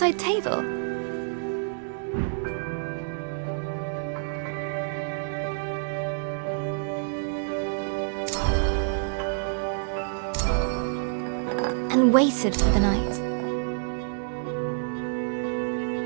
table. And waited for the night.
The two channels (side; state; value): left; silent; digital silence